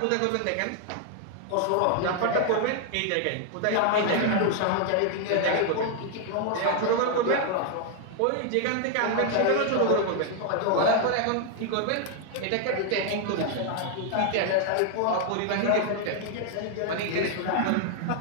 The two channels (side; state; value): both; different; correlation 0.00